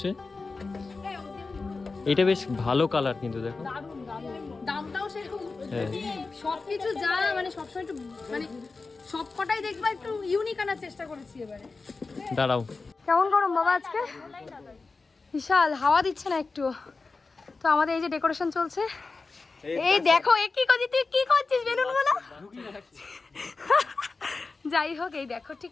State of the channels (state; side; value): quieter; right; 4.0 dB